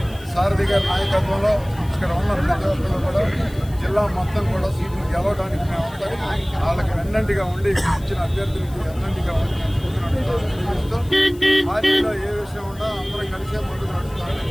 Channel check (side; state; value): left; noise; hiss, 23 dB below the sound